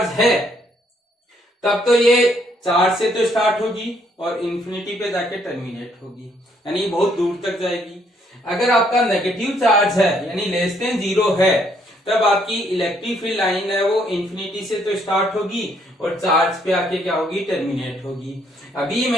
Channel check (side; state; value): both; normal; correlation 0.69